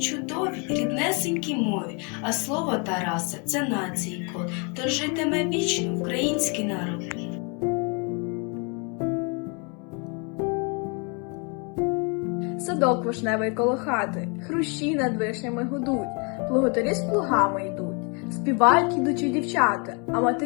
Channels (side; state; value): right; quieter; 34.5 dB